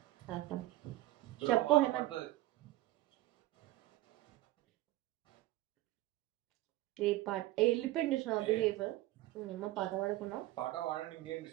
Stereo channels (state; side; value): quieter; left; 16.7 dB